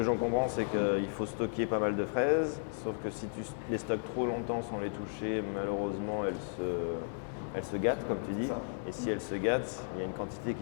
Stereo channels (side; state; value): right; silent; digital silence